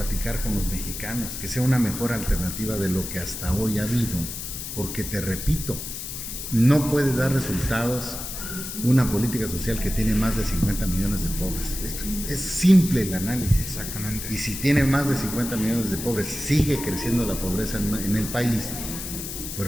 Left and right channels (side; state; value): left; noise; hiss, 7 dB below the sound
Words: con los mexicanos, que sea una mejor alternativa de lo que hasta hoy ha habido. Porque te repito, no puede dar resultados una política social que tiene más de 50 millones de pobres. Es simple el análisis. Exactamente. Y si tiene más de 50 millones de pobres, sigue creciendo la pobreza en el país,